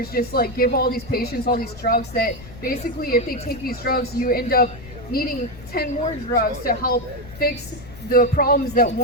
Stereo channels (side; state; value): left; noise; rumble, 17 dB below the sound